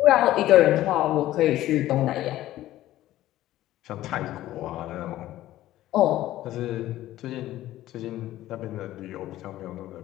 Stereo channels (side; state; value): right; quieter; 14.6 dB